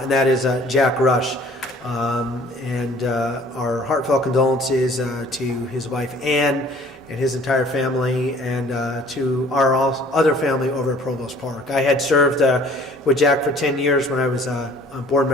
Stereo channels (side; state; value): both; normal; correlation 0.53